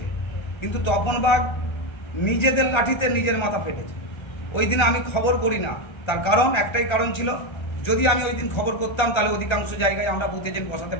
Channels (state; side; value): late; right; 1.3 ms